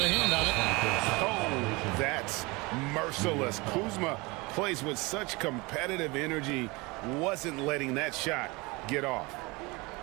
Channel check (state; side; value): quieter; left; 25.0 dB